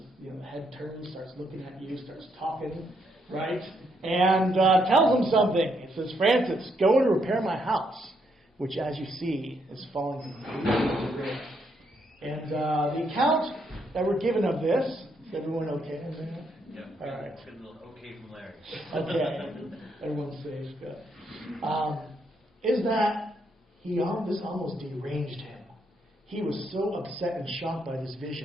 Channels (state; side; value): normal; both; correlation 0.75